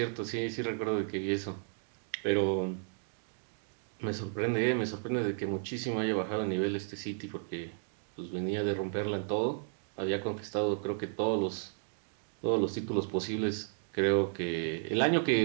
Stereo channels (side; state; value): left; silent; digital silence